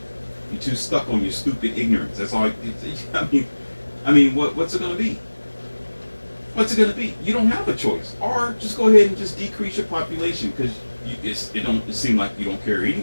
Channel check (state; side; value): inverted; both; correlation -1.00